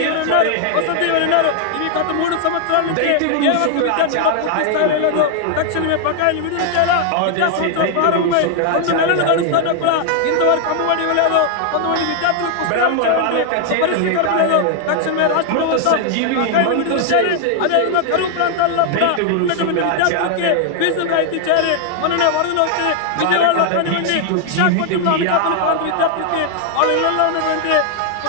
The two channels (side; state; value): both; different; correlation 0.00